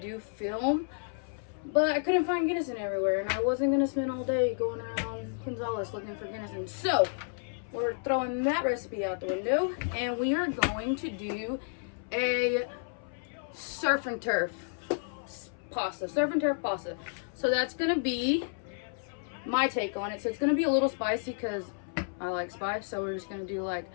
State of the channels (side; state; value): right; silent; 57 dB below the other